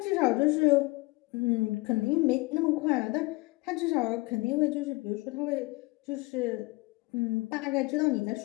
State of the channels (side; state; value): right; quieter; 23.6 dB